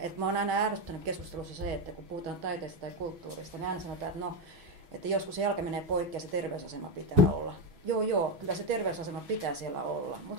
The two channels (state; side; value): late; left; 6.2 ms